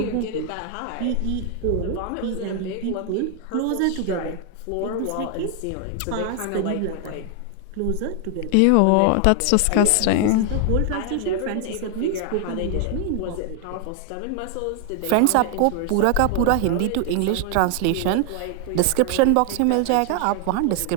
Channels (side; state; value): both; different; correlation 0.00